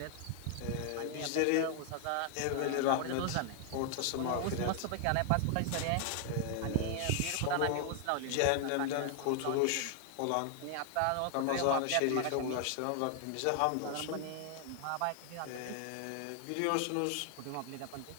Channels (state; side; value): different; both; correlation 0.00